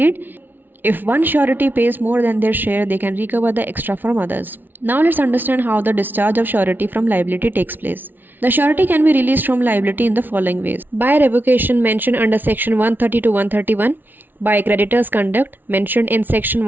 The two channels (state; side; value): late; left; 0.090 ms